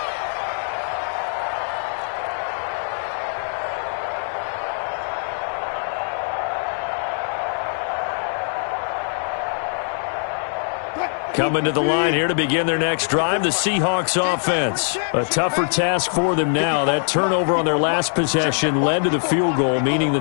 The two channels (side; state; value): right; silent; 64 dB below the other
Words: Coming to the line here to begin their next drive, the Seahawks offense. A tougher task for them now. That turnover on their last possession led to the field goal, meaning